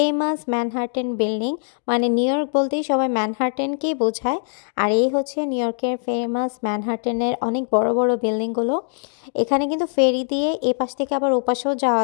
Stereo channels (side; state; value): right; silent; digital silence